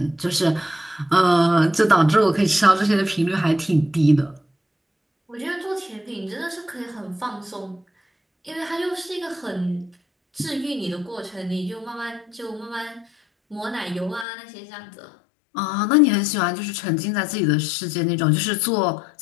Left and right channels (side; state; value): right; drops out; at 14.2 s